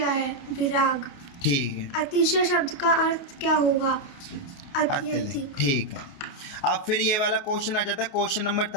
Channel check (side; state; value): right; late; 28 ms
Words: है? विराग। ठीक है। अतिशय शब्द का अर्थ क्या होगा? अत्यधिक। ठीक है। अब फिर ये वाला क्वेश्चन आ जाता है, क्वेश्चन नंबर